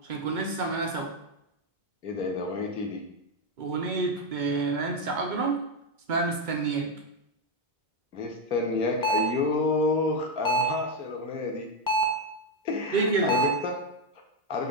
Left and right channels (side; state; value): left; late; 2.2 ms